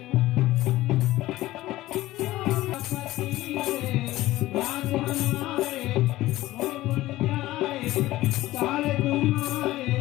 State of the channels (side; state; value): right; quieter; 16.7 dB